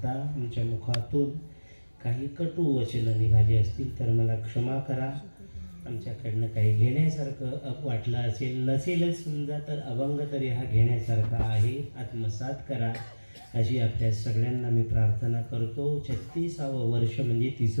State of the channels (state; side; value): inverted; both; correlation -1.00